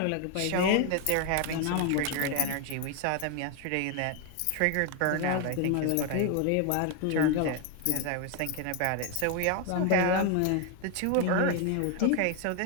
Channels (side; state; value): both; different; correlation 0.01